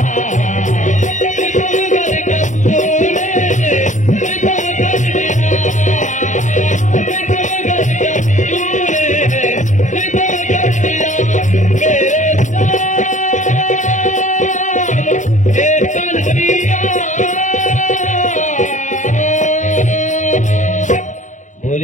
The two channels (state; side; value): late; right; 0.36 ms